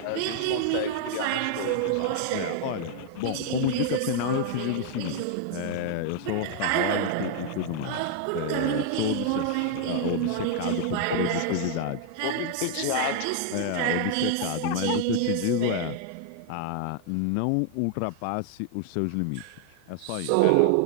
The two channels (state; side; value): different; both; correlation 0.00